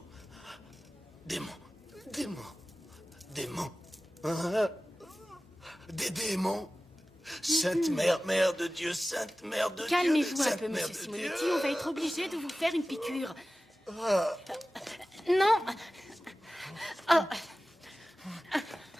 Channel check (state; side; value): normal; both; correlation 0.96